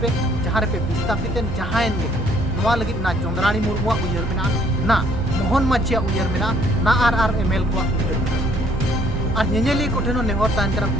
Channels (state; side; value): normal; both; correlation 0.63